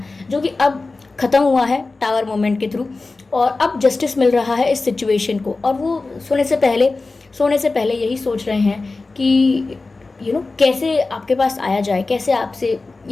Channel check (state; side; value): quieter; right; 3.6 dB